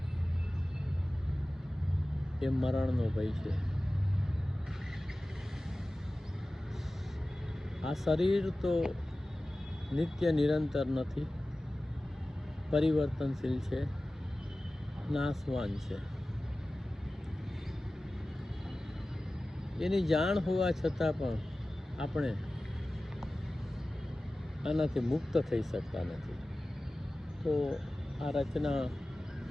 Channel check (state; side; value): normal; both; correlation 0.96